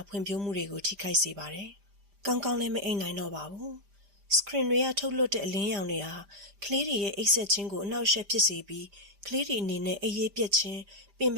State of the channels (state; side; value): late; left; 5.0 ms